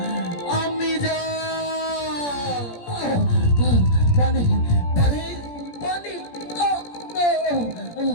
আমি যা পানি পানি পানি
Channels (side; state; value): right; late; 17 ms